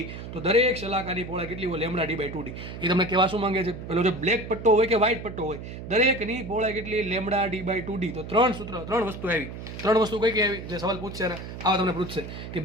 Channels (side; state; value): right; noise; hum, 10 dB below the sound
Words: તો દરેક શલાકાની પહોળાઈ કેટલી હોય? λ/d/2d. એ તમને કહેવા શું માંગે છે? પેલો જે બ્લેક પટ્ટો હોય કે વ્હાઇટ પટ્ટો હોય, દરેકની પહોળાઈ કેટલી? λ/d/2d. તો ત્રણ વસ્તુ આવી. ત્રણ વસ્તુ કઈ કઈ આવી? જે સવાલ પૂછશે ને આવા તમને પૂછશે કે